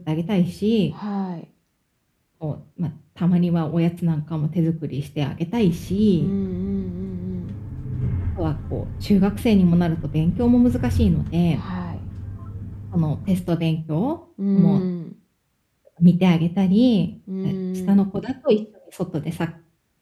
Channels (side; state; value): both; identical; correlation 1.00